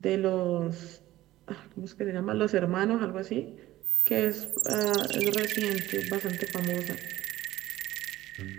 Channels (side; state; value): left; quieter; 15.6 dB